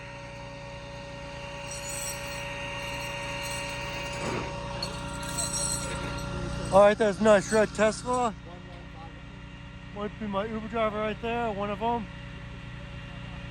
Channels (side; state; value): both; identical; correlation 1.00